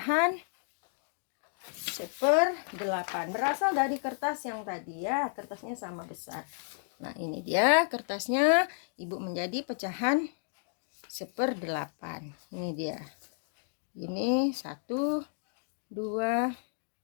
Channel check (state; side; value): silent; right; digital silence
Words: 1/8. Berasal dari kertas yang tadi ya. Kertasnya sama besar. Nah, ini dia kertasnya. Ibu menjadi pecahan 1/8. Ini dia. Ini 1, 2.